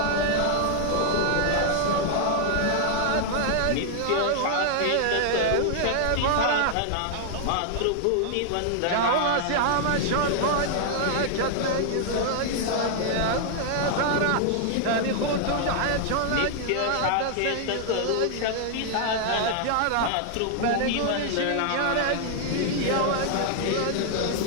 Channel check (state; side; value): different; both; correlation 0.00